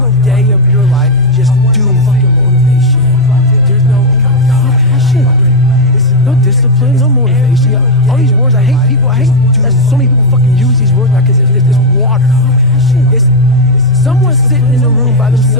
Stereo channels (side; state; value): both; normal; correlation 0.03